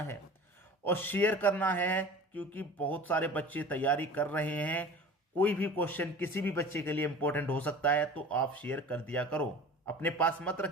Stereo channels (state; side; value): normal; both; correlation 0.40